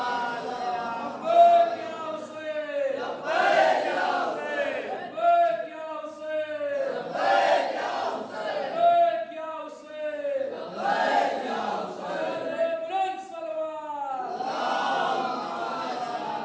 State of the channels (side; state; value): both; identical; correlation 1.00